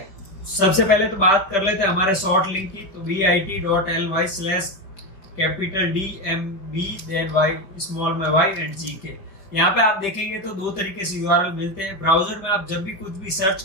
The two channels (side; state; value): right; late; 5.4 ms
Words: सबसे पहले तो बात कर लेते हैं हमारे शॉर्ट लिंक की। तो bit.ly/DMB देन y स्मॉल में y एंड GK। यहाँ पे आप देखेंगे तो 2 तरीके से URL मिलते हैं। ब्राउजर में आप जब भी कुछ भी सर्च